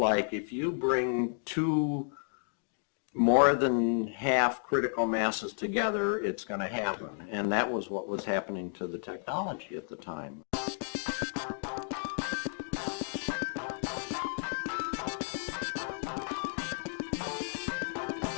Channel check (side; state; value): right; silent; digital silence